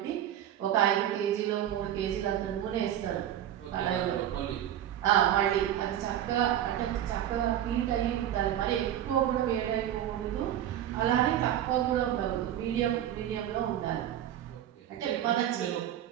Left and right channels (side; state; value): left; quieter; 11.3 dB